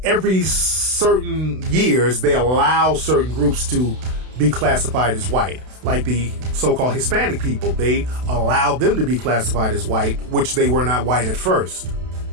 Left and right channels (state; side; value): late; left; 32 ms